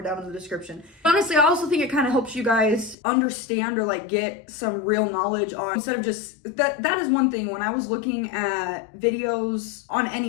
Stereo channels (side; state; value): right; drops out; at 3.0 s